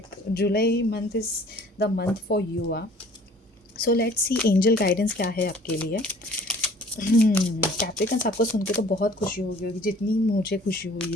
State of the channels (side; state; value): both; normal; correlation 0.51